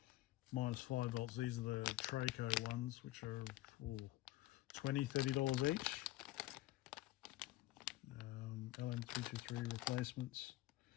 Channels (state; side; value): quieter; right; 16.9 dB